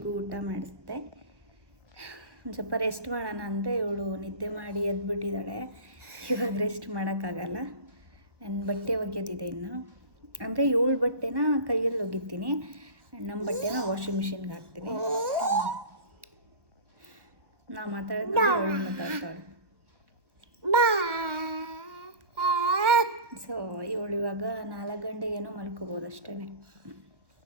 ಊಟ ಮಾಡಿಸ್ದೆ. ಒಂದು ಸ್ವಲ್ಪ ರೆಸ್ಟ್ ಮಾಡೋಣ ಅಂದರೆ ಇವಳು ನಿದ್ದೆ ಮಾಡಿ ಎದ್ಬಿಟ್ಟಿದ್ದಾಳೆ. ಇವಾಗ ರೆಸ್ಟ್ ಮಾಡೋಕ್ಕಾಗಲ್ಲ. ನನ್ನ ಬಟ್ಟೆ ಒಗೆಯೋದಿದೆ ಇನ್ನು. ಅಂದರೆ ಇವಳು ಬಟ್ಟೆನ ಕೈಯಲ್ಲಿ ಒಗಿತೀನಿ, ನಮ್ಮ ಬಟ್ಟೆನ ವಾಷಿಂಗ್ ಮಿಷಿನ್ಗೆ ಹಾಕ್ತೀನಿ. ನಾ ಮಾತಾಡಿದ್ರೆ ಅವಳು ಮಾತಾಡ್ತಾಳೆ. ಸೊ ಇವಳು ಇವಾಗ 4 ಗಂಟೆಗೇನೋ ಮಲ್ಕೋಬೋದು ಅಷ್ಟೇ.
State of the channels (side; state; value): left; late; 1.1 ms